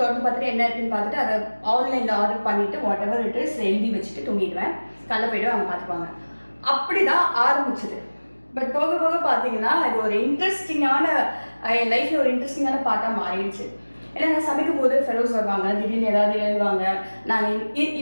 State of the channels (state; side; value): inverted; both; correlation -1.00